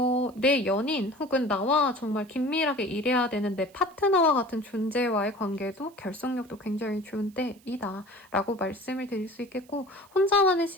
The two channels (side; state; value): right; noise; hiss, 29 dB below the sound